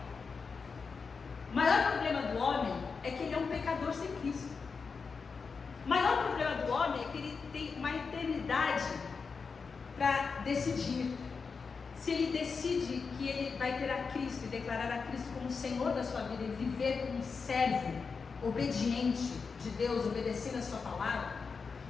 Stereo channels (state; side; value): quieter; right; 5.1 dB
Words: O maior problema do homem é que ele é um pecador sem Cristo. O maior problema do homem é que ele tem uma eternidade para decidir. Se ele decide que ele vai ter a Cristo e declarar a Cristo como Senhor da sua vida e viver como um servo obediente de Deus, obedecendo a sua palavra,